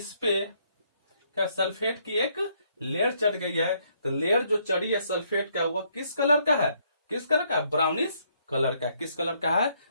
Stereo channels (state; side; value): inverted; both; correlation -0.70